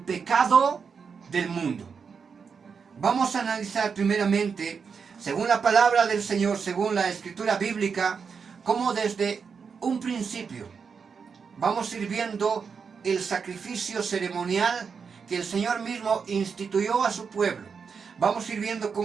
del mundo. Vamos a analizar primeramente, según la palabra del Señor, según la escritura bíblica, cómo desde un principio vamos a ir viendo el sacrificio ceremonial que el Señor mismo instituyó a su pueblo. Vamos a ir viendo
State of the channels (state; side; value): quieter; left; 5.9 dB